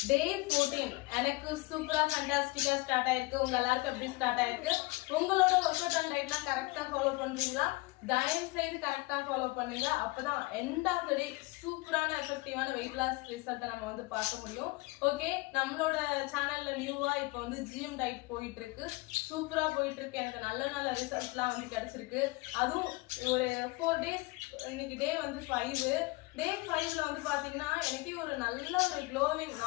டே 14 எனக்கு சூப்பரா ஃபேண்டாஸ்டிக்கா ஸ்டார்ட் ஆயிருக்கு. உங்க எல்லாருக்கும் எப்படி ஸ்டார்ட் ஆயிருக்கு? உங்களோட ஒர்க் அவுட் அண்ட் டயட்லாம் கரெக்டா ஃபாலோ பண்றீங்களா? தயவு செய்து கரெக்டா ஃபாலோ பண்ணுங்க. அப்பதான் எண்ட் ஆஃப் த டே சூப்பரான எஃபெக்டிவான வெயிட் லாஸ் ரிசல்ட்டை நம்ம வந்து பார்க்க முடியும். ஓகே, நம்மளோட சேனல்ல நியூவா இப்போ வந்து ஜிஎம் டயட் போயிட்டு இருக்கு. சூப்பரா போயிட்டு இருக்கு. எனக்கு நல்ல நல்ல ரிசல்ட்லாம் வந்து கிடைச்சிருக்கு. அதுவும் ஒரு 4 days, இன்னைக்கு டே வந்து 5. டே 5ல வந்து பாத்தீங்கன்னா எனக்கே ஒரு நல்ல ஒரு க்ளோவிங்,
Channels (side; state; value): right; quieter; 23.1 dB